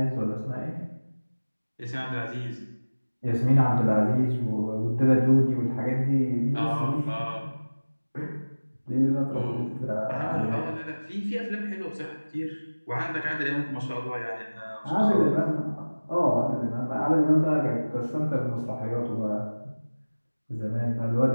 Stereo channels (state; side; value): inverted; both; correlation -1.00